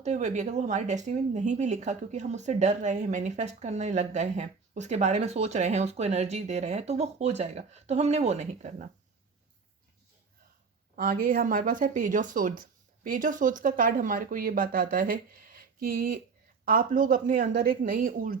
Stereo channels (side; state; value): left; quieter; 5.0 dB